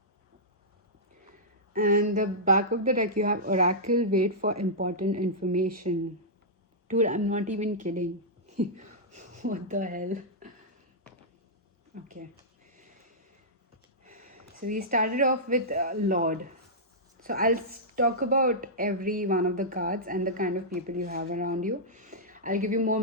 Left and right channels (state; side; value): normal; both; correlation -0.13